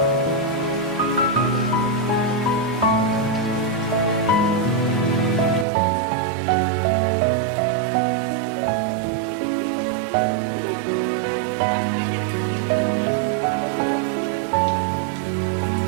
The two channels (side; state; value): left; drops out; at 5.7 s